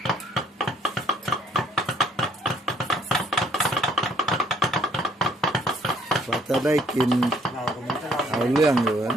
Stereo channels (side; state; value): both; normal; correlation 0.63